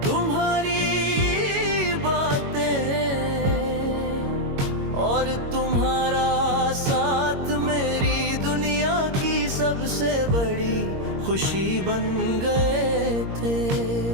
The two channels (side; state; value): left; late; 22 ms